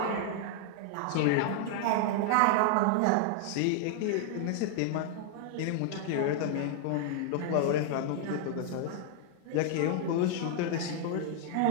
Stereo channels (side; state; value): both; different; correlation 0.00